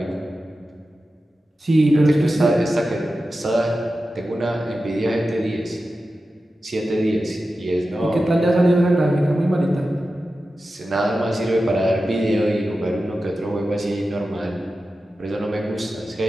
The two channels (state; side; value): normal; both; correlation 0.93